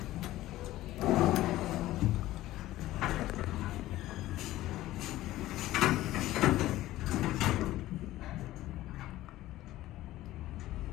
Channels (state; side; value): quieter; right; 15.7 dB